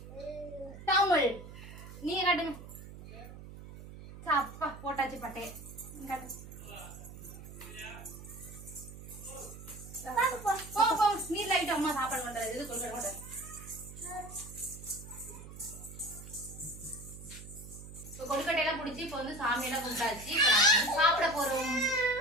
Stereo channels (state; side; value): noise; right; hum, 14 dB below the sound